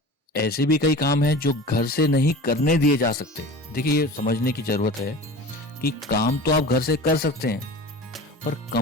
ऐसे भी कई काम हैं जो घर से नहीं करने दिए जा सकते. देखिए, ये समझने की जरूरत है कि काम तो आप घर से कर सकते हैं, पर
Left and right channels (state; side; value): normal; both; correlation 0.36